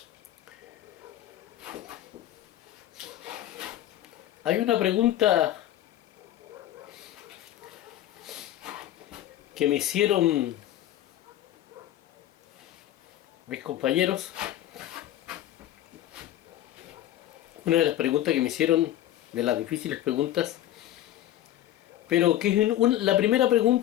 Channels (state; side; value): quieter; right; 13.0 dB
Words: Hay una pregunta que me hicieron mis compañeros. Una de las preguntas que me hicieron, de las difíciles preguntas, pero que es la primera